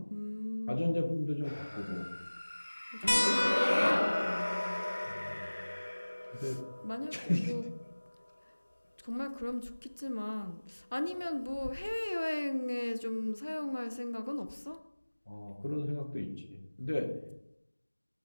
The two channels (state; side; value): inverted; both; correlation -1.00